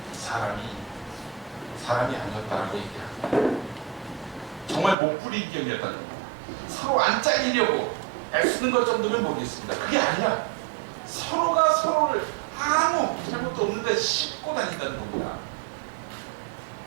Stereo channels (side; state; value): left; drops out; at 5.0 s